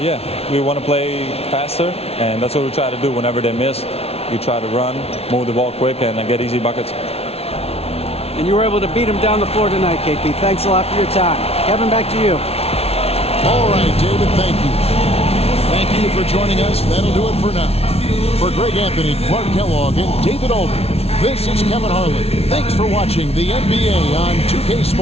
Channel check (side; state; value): right; late; 0.30 ms